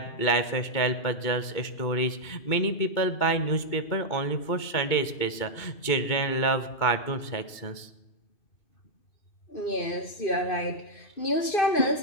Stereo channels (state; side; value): late; right; 2.2 ms